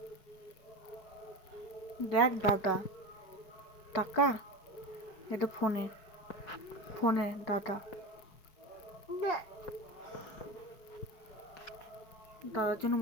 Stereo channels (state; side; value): late; right; 5.2 ms